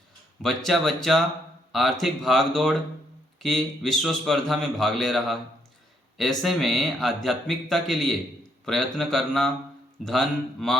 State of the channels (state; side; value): normal; both; correlation 0.73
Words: बच्चा बच्चा आर्थिक भागदौड़ की विश्व स्पर्धा में भाग ले रहा है। ऐसे में आध्यात्मिकता के लिए प्रयत्न करना, धन